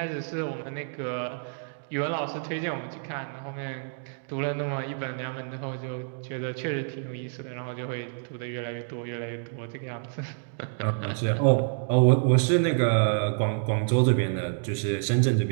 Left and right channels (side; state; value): left; silent; digital silence